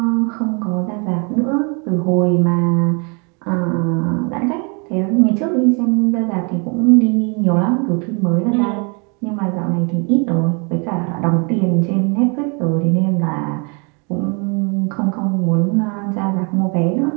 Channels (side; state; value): left; quieter; 33.7 dB